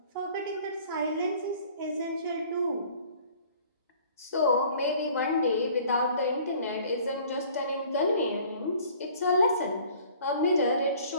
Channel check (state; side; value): inverted; both; correlation -0.52